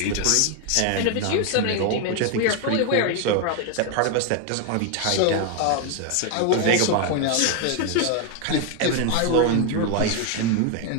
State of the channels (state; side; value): different; both; correlation 0.01